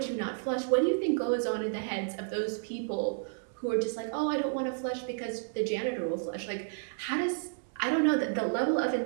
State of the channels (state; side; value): silent; left; 57 dB below the other